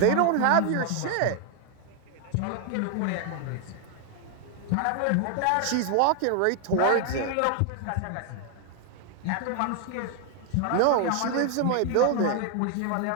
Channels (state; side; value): different; both; correlation 0.00